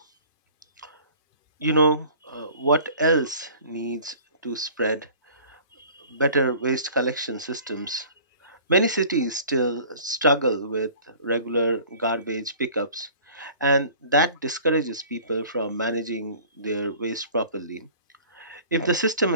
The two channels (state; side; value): inverted; both; correlation -0.48